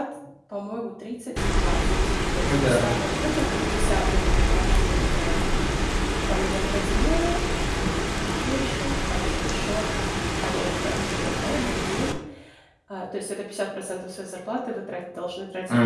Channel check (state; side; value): identical; both; correlation 1.00